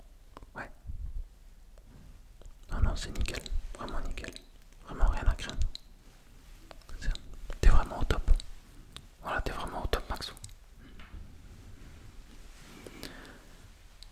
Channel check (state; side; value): identical; both; correlation 1.00